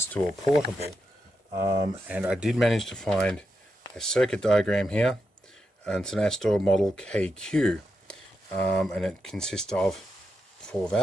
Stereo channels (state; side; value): normal; both; correlation 0.86